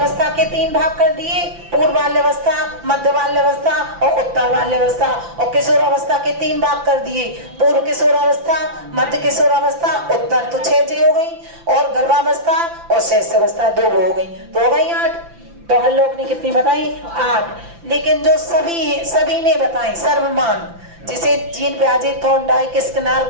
के 3 भाग कर दिए, पूर्व बाल्यावस्था, मध्य बाल्यावस्था और उत्तर बाल्यावस्था। और किशोरावस्था के 3 भाग कर दिए, पूर्व किशोरावस्था, मध्य किशोरावस्था, उत्तर। तो 6 हो गई। और गर्भावस्था और शैशवावस्था 2 हो गई, तो हो गई 8। तो हर लोग ने कितनी बताई? 8। लेकिन जो सभी ने बताई सर्वमान, जिसे जीन पियाजे, थॉर्नडाइक, स्किनर,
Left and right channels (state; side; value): late; left; 5.9 ms